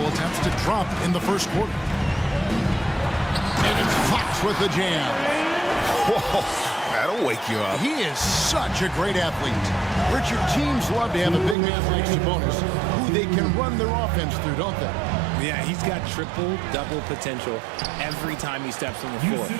attempts to drop in the first quarter. And it's Fox with the jam. Whoa, that'll wake you up. He is such a great athlete. Richard, teams love to have a big man like Sabonis, who they can run their offense through, don't they? Yeah, he's got triple-double potential every time he steps on the floor.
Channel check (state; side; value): drops out; left; at 11.6 s